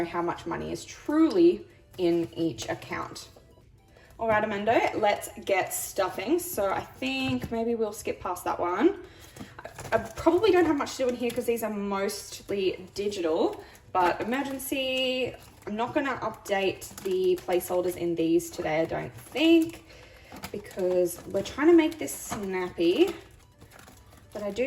how much money is truly in each account. All right, Amendo, let's get stuffing. So I think maybe we'll skip past that one. I probably don't have much to do in here because these are mostly digital, but emergency, I'm not gonna update the placeholders in these today, I don't think, because we're trying to make this snappy. But I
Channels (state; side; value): identical; both; correlation 1.00